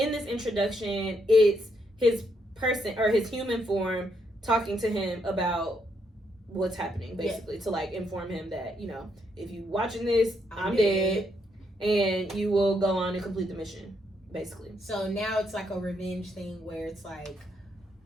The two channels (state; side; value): normal; both; correlation 0.76